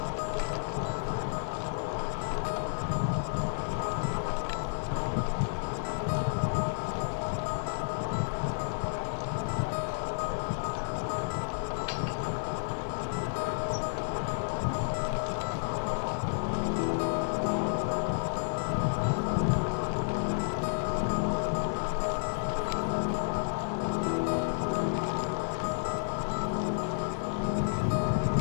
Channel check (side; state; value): right; silent; 57 dB below the other